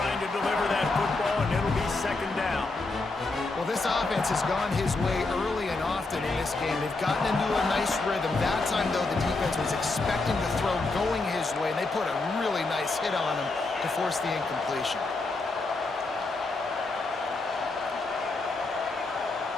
to deliver that football, and it'll be 2nd down. Well, this offense has gone his way early and often in this game. They've gotten into a nice rhythm. That time, though, the defense was expecting the throw going his way, and they put a really nice hit on him to force the incompletion.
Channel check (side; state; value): right; quieter; 3.4 dB